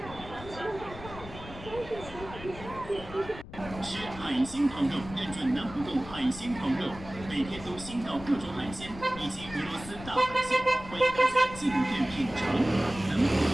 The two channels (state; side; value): noise; left; rumble, 14 dB below the sound